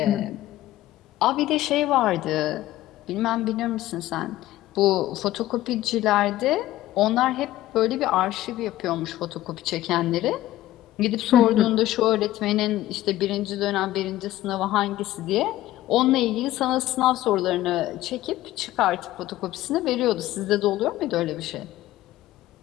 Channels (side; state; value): right; quieter; 15.1 dB